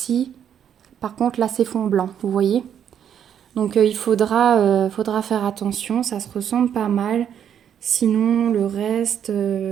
Par contre, là, c'est fond blanc, vous voyez. Donc, il faudra faire attention. Ça se ressemble pas mal. Sinon, le reste...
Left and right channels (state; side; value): quieter; left; 9.0 dB